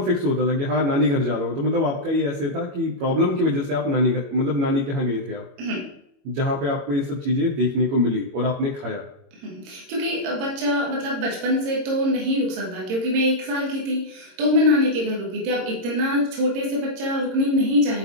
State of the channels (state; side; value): late; left; 22 ms